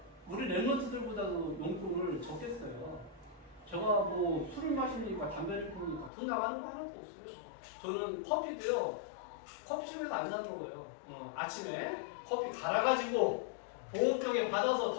우리 랩런트들보다도 용돈을 적게 써요. 제가 뭐 술을 마시니까 담배를 피우니까 돈 나가는 거 하나도 없어요. 저는 커피도요, 커피숍에서 안 사 먹어요. 아침에 커피 갈아가지고 보온병에 받아서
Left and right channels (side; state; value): right; drops out; at 6.1 s